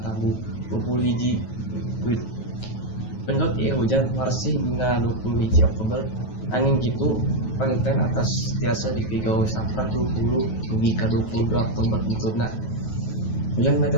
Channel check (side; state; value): right; late; 9.3 ms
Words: tabu 21 wit. Penut ieu hujan marsih dina 21 Oktober. Angin kitu panginten atas tiasa dipigawe saprak 20 dugi ka 22 Oktober bentukna. Hujan